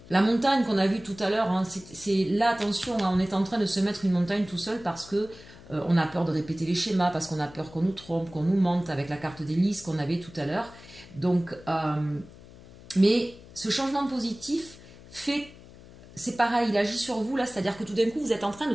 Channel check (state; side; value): noise; left; hum, 20 dB below the sound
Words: La montagne qu'on a vue tout à l'heure, hein, c'est là, attention, hein, on est en train de se mettre une montagne tout seul parce que on a peur de répéter les schémas, parce qu'on a peur qu'on nous trompe, qu'on nous mente avec la carte des listes qu'on avait tout à l'heure. Donc, mais ce changement positif fait, c'est pareil, il agit sur vous là, c'est-à-dire que tout d'un coup vous êtes en train de